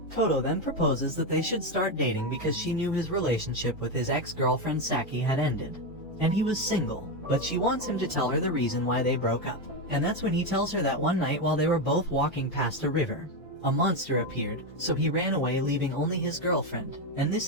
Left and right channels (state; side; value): normal; both; correlation 0.09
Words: Kodo then proposes that they should start dating because she knew his relationship with his ex-girlfriend Saki had ended, and he was single, but she wants him to tell her the reason why they broke up. And that's when he tells her that one night while they were both walking past a river, a monster appeared, so he ran away leaving only his girlfriend, and